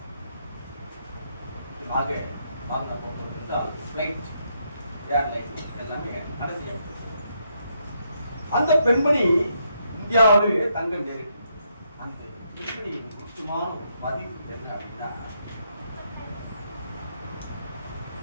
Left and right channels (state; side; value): inverted; both; correlation -0.77